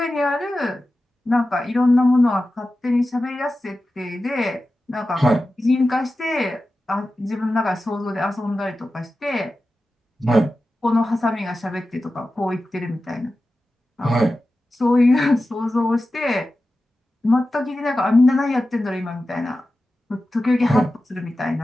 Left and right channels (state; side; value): normal; both; correlation 0.94